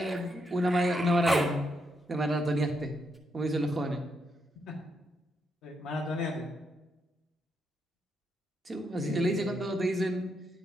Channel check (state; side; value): normal; both; correlation 0.80